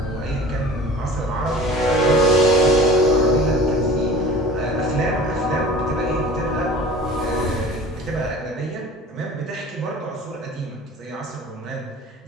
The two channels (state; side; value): normal; both; correlation 0.41